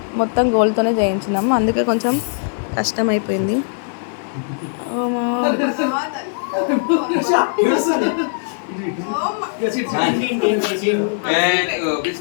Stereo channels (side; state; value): right; silent; 63 dB below the other